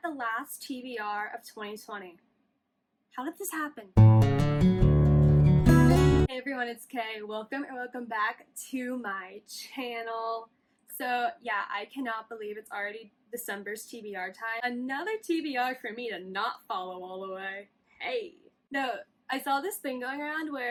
the last TBR of 2020. How did this happen? Hey everyone, it's Kay. Welcome back to my channel. So yeah, I cannot believe it's already December's TBR time. Another TBR for me to not follow all the way. Hey. No, I saw this thing going around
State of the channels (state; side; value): identical; both; correlation 1.00